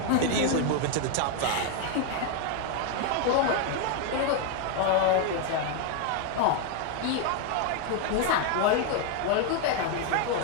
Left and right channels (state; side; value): different; both; correlation 0.01